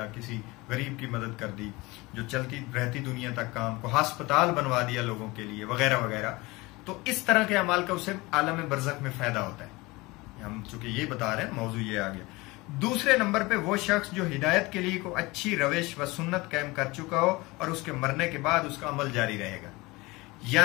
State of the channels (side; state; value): right; quieter; 22.7 dB